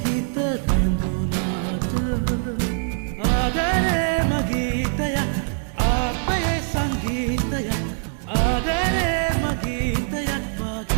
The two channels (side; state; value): left; silent; digital silence